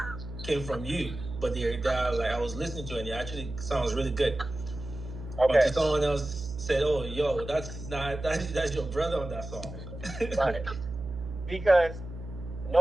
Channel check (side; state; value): right; noise; hum, 10 dB below the sound